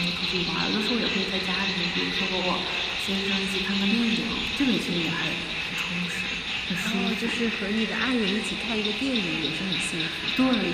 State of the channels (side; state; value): both; identical; correlation 1.00